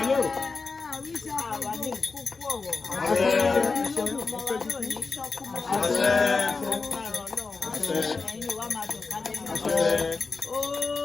Àwa ní kúkú ọ̀wọ̀. Ọmọ wa náà ní ṣọ́kú mọ́. Lágbára Ọlọ́run. Ẹ̀yin wa máa dùn ká lẹ́nu.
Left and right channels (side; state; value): right; quieter; 4.3 dB